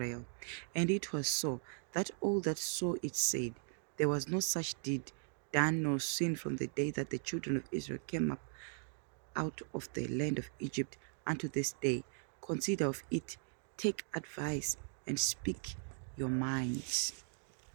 And it was so, that all that saw it said, There was no such deed done nor seen from the day that the children of Israel came up out of the land of Egypt unto this day. Consider of it, take advice, and speak your minds.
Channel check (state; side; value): silent; left; 52 dB below the other